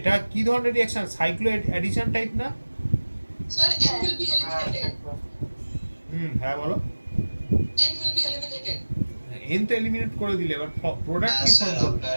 কি ধরনের রিঅ্যাকশন সাইক্লো অ্যাডিশন টাইপ না sir N will be eliminated হ্যাঁ বলো N will be eliminated N তো এলিমিনেট করে দিলে এবার প্রোডাক্ট কি স্যার ফর্ম করবে আপনার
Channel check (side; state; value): both; inverted; correlation -1.00